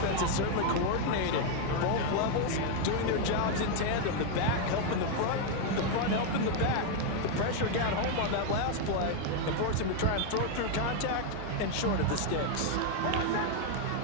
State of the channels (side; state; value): both; different; correlation 0.01